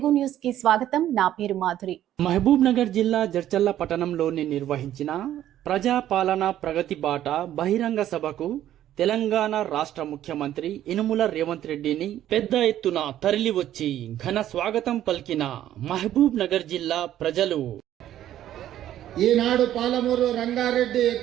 news కి స్వాగతం. నా పేరు మాధురి. మహబూబ్ నగర్ జిల్లా జడ్చర్ల పట్టణంలోని నిర్వహించిన ప్రజాపాలన ప్రగతి బాట బహిరంగ సభకు తెలంగాణ రాష్ట్ర ముఖ్యమంత్రి యనుమల రేవంత్ రెడ్డిని పెద్ద ఎత్తున తరలివచ్చి ఘన స్వాగతం పలికిన మహబూబ్ నగర్ జిల్లా ప్రజలు ఈనాడు పాలమూరు రంగారెడ్డి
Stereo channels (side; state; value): left; quieter; 12.1 dB